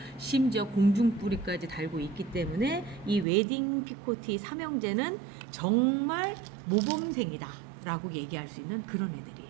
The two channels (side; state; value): left; drops out; at 3.2 s